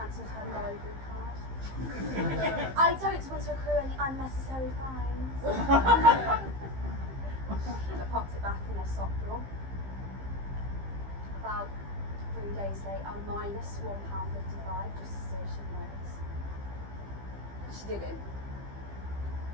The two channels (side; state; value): left; late; 15 ms